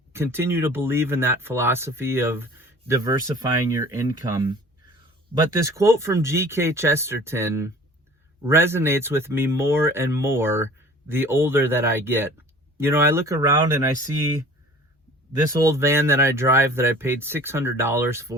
continue to believe in that philosophy of diversifying your income. But this quote from G.K. Chesterton resonates with me more and more the older that I get. I look around and I see this old van that I drive that I paid $600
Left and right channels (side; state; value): both; normal; correlation 0.46